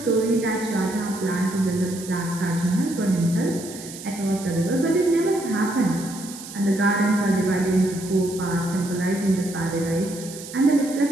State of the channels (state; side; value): noise; right; hiss, 14 dB below the sound